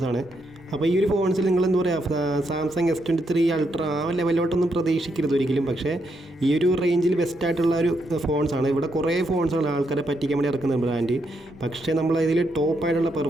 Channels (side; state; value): both; normal; correlation 0.79